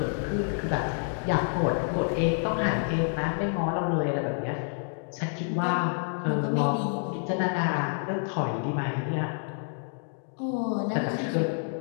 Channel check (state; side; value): silent; right; 59 dB below the other